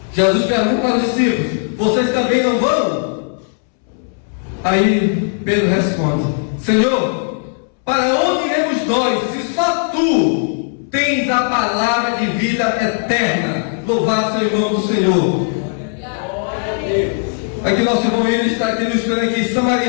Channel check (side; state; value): right; silent; 66 dB below the other